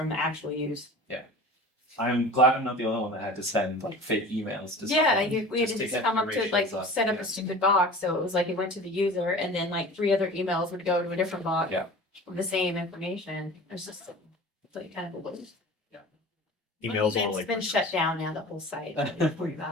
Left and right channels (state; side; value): normal; both; correlation 0.38